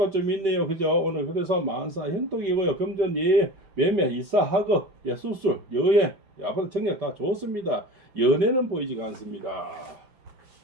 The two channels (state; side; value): late; left; 5.2 ms